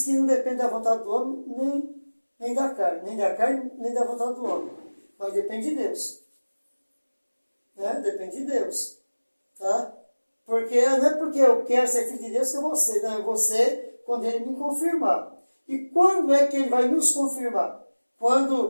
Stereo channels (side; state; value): both; inverted; correlation -1.00